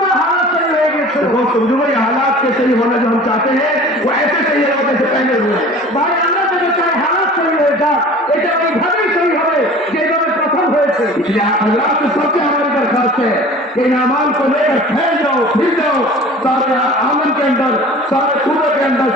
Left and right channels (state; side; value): normal; both; correlation 0.43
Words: हालात तैयार हो गए। दोस्तों जो ये हालात के सही होना जो हम चाहते हैं वो ऐसे सही है जैसे पहले हुए। भाई আমরা যদি চাই हालात सही हो जाए, এটা ওইভাবেই सही হবে যেভাবে প্রথম হয়েছে। इसलिए अल्लाह से सबसे हमारी दरखास्त है कि इन अमाल को लेकर फैल जाओ, फिर जाओ सारे आमन के अंदर, सारे सूबे के अंदर,